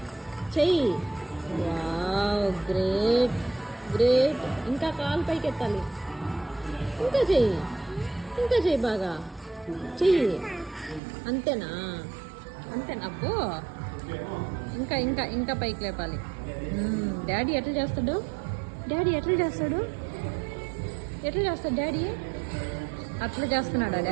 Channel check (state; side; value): drops out; left; at 11.0 s